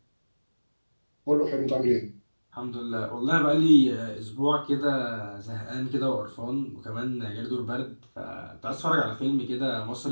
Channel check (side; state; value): both; inverted; correlation -1.00